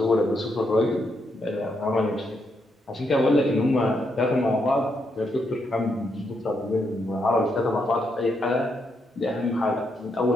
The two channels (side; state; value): both; normal; correlation 0.79